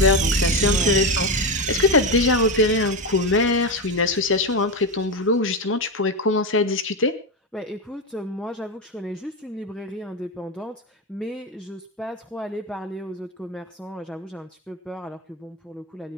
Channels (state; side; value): normal; both; correlation 0.13